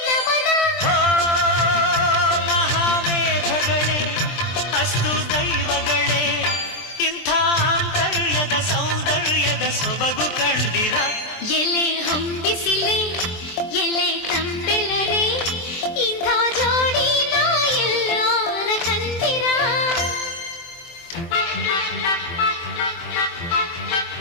ನಮನ ಮಹಾಮೇಘಗಳೇ ಅಸ್ತು ದೈವಗಳೇ ಇಂಥ ಆಂತರ್ಯದ ಸೌಂದರ್ಯದ ಸೊಬಗು ಕಂಡಿರ ಎಲೆ ಹೊಂಬಿಸಿಲೆ ಎಲೆ ತಂಬೆಳರೆ ಇಂಥ ಜೋಡಿ ನಾ ಎಲ್ಲಾರ ಕಂದಿರ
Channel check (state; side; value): late; right; 23 ms